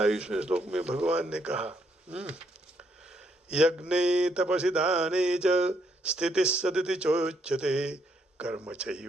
श्लोक में भगवान ने कहा, यज्ञे तपसि दाने च स्थितिः सदिति चोच्यते कर्म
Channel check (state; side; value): normal; both; correlation 0.73